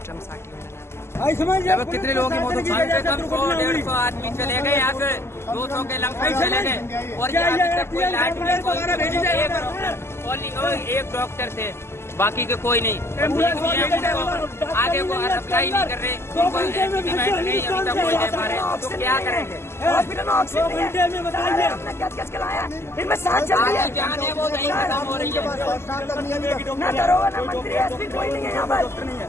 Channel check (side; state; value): right; late; 0.12 ms